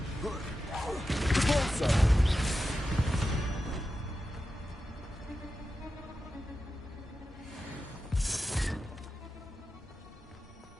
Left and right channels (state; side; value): normal; both; correlation 0.91